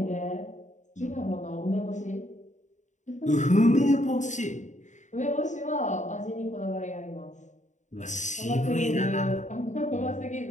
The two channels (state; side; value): late; right; 0.35 ms